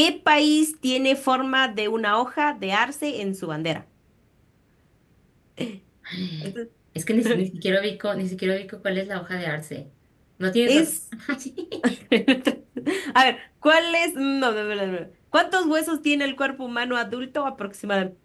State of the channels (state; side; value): identical; both; correlation 1.00